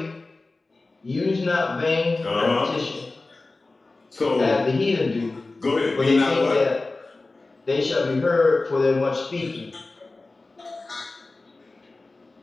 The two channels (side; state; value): right; quieter; 3.3 dB